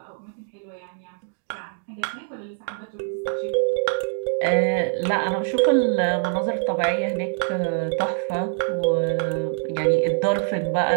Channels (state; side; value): silent; left; 63 dB below the other